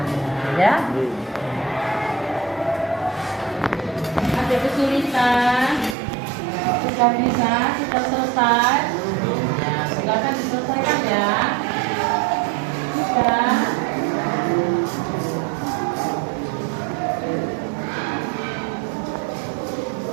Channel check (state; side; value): drops out; left; at 6.0 s